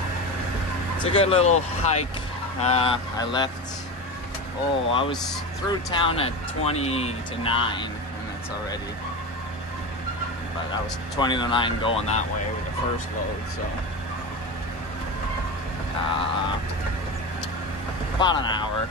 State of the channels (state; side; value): normal; both; correlation 0.24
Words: it's a good little hike. I was through town at 20 to 9, and that's already, but I was 20 to 9 going that way with the first load, so about an hour.